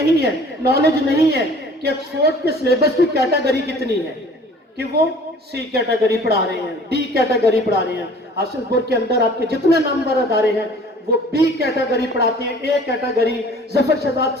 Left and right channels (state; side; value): normal; both; correlation 0.49